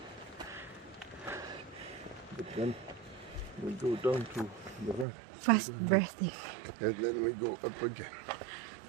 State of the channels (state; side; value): drops out; left; at 5.1 s